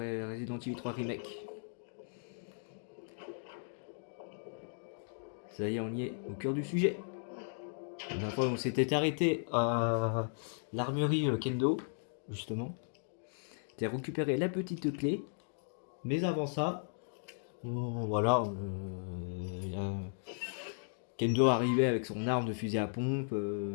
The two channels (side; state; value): right; silent; digital silence